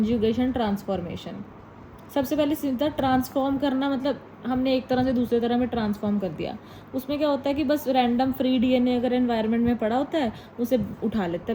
ट्रांसफॉर्मेशन। सबसे पहले सीधा ट्रांसफॉर्म करना, मतलब हमने एक तरह से दूसरे तरह में ट्रांसफॉर्म कर दिया। उसमें क्या होता है कि बस रैंडम फ्री डीएनए अगर एनवायरनमेंट में पड़ा होता है उसे उठा लेता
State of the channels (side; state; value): both; identical; correlation 1.00